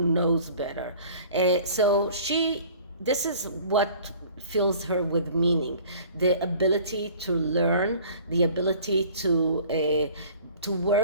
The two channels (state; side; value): inverted; both; correlation -0.48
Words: better. So this is what fills her with meaning, the ability to learn, the ability to